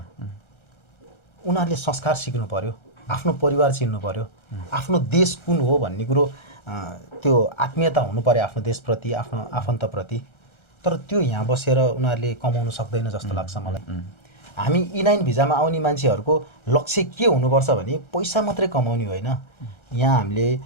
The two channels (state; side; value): late; right; 1.3 ms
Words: उनीहरूले संस्कार सिक्नु पर्यो, आफ्नो परिवार चिन्नु पर्यो, आफ्नो देश कुन हो भन्ने कुरो त्यो आत्मीयता हुनु पर्यो आफ्नो देशप्रति, आफ्नो आफन्तप्रति। तर त्यो यहाँ बसेर उनीहरूले कमाउन सक्दैन जस्तो लाग्छ मलाई। हामी E9 भिजामा आउने मान्छेहरूको लक्ष्य के हुनुपर्छ भने पैसा मात्रै कमाउने होइन, यहाँ हामीले